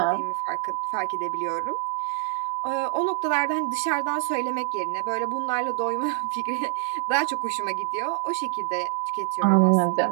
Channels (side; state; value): left; silent; digital silence